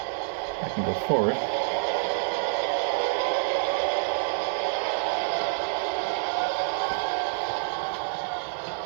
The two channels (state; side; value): silent; left; digital silence